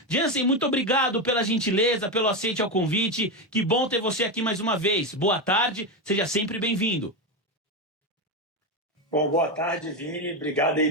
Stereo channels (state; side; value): normal; both; correlation 0.12